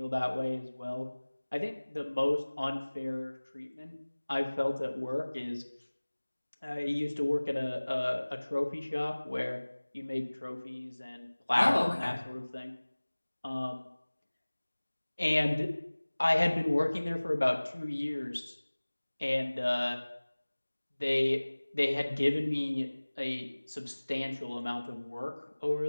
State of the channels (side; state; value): both; inverted; correlation -1.00